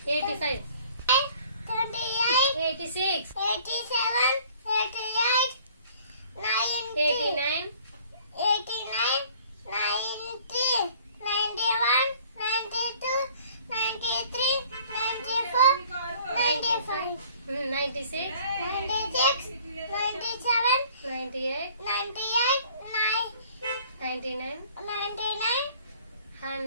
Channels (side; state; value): both; inverted; correlation -0.54